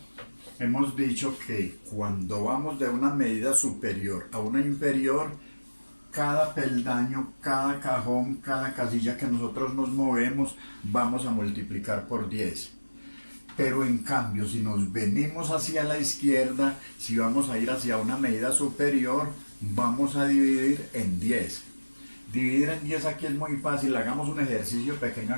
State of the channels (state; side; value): inverted; both; correlation -1.00